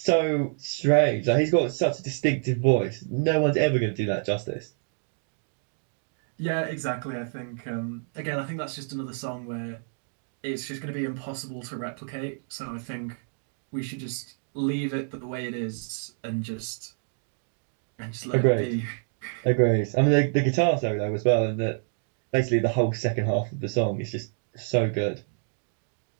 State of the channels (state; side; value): silent; left; digital silence